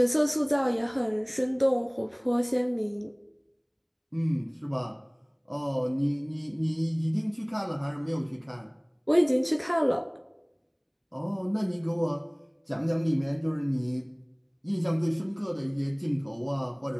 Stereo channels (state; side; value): identical; both; correlation 1.00